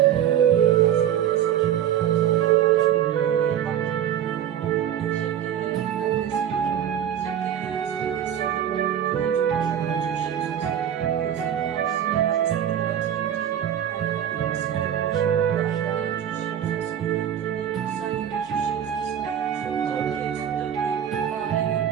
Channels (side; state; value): left; quieter; 9.9 dB